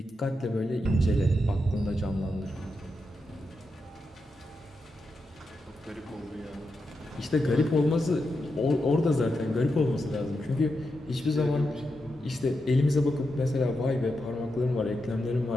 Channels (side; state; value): both; normal; correlation 0.87